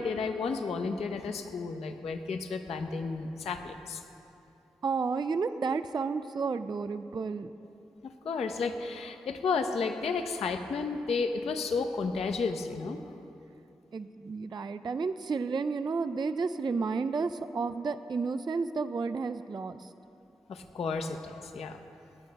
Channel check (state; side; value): normal; both; correlation 0.76